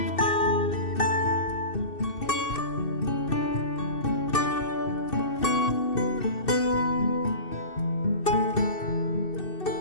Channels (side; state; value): right; late; 2.7 ms